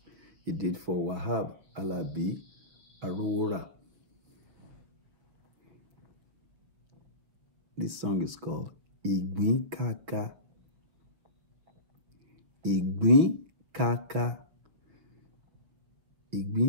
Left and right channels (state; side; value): late; left; 6.3 ms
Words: he did for Wahabi Alabi Arowora. This song is called Igbin Kaka. Igbin Kaka.